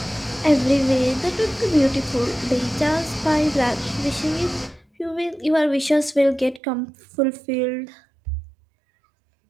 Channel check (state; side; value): drops out; left; at 6.6 s